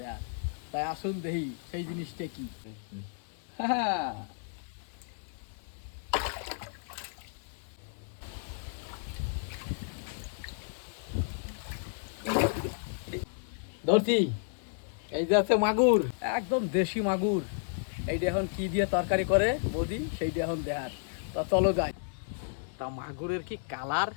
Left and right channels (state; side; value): silent; right; 56 dB below the other